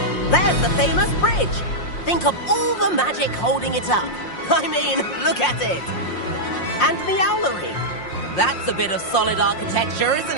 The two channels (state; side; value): late; right; 5.6 ms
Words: There's the famous bridge. Think of all the magic holding it up. I mean, look at it. And the owlery. That's a bit of solid architecture, isn't